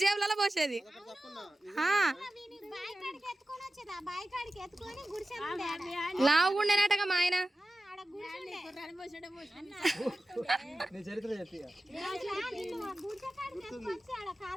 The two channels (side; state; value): both; normal; correlation 0.94